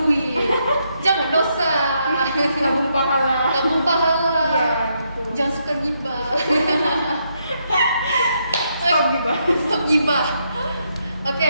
jangan dosa. nabung pahala. Nabung pahala. Iya gitu. Jangan suka gibah. Stop gitu. Stop gibah. Oke,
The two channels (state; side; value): inverted; both; correlation -0.78